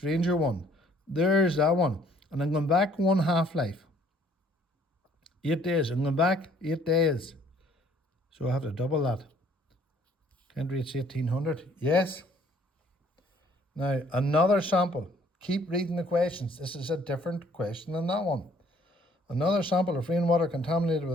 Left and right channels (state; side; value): normal; both; correlation 0.61